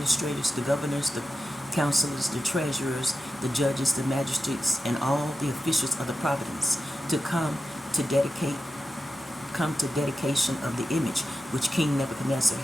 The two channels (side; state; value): both; normal; correlation 0.91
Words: the governors, the counselors, the treasurers, the judges, the magistrates, and all the officials of the province to come to dedication of the image which King Nebuchadnezzar